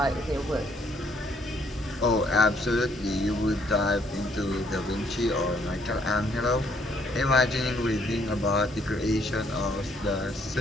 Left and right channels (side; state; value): both; normal; correlation 0.68